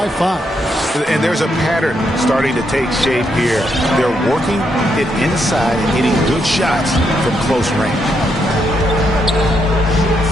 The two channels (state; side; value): normal; both; correlation 0.78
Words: 5. And there's a pattern starting to take shape here. They're working it inside and hitting good shots from close range.